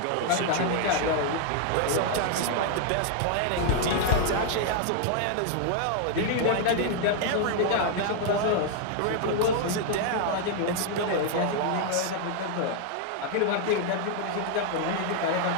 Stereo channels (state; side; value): different; both; correlation 0.00